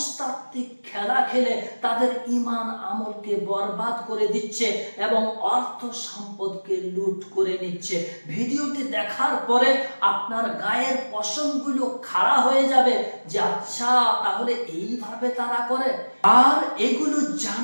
খেলা খেলে তাদের ঈমান আমলকে বরবাদ করে দিচ্ছে এবং অর্থ সম্পদকে লুট করে নিচ্ছে। ভিডিওটি দেখার পরে আপনার গায়ের পশমগুলো খাড়া হয়ে যাবে যে আচ্ছা, তাহলে এইভাবে তারা করে। আর এগুলো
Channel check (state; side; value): inverted; both; correlation -1.00